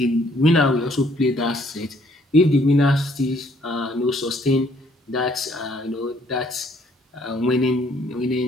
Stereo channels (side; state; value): both; normal; correlation 0.65